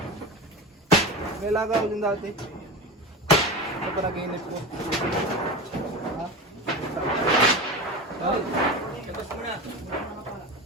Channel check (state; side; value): normal; both; correlation 0.26